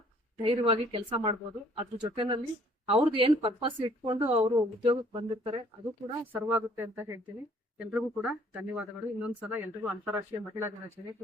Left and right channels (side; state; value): both; normal; correlation 0.59